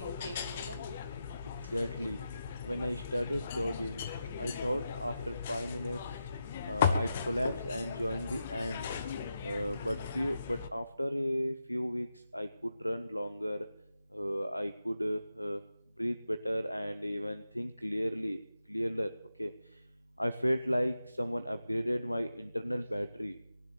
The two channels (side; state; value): both; inverted; correlation -0.88